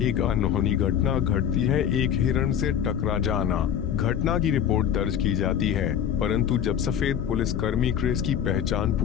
एक अनहोनी घटना घटती है, एक हिरण से टकरा जाना। घटना की रिपोर्ट दर्ज की जाती है, परंतु जब सफेद पुलिसकर्मी क्रिस की पहचान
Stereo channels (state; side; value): quieter; right; 9.2 dB